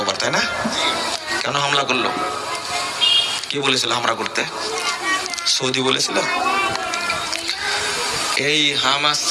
তাই না? কেন হামলা করলো? কে বলেছিল হামলা করতে? সৌদি বলেছিল। এই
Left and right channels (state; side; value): identical; both; correlation 1.00